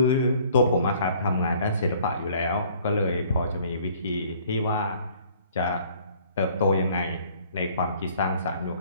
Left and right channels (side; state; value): both; inverted; correlation -0.57